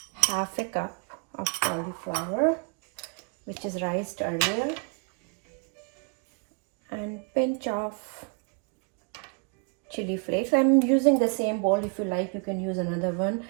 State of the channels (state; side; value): quieter; left; 37.2 dB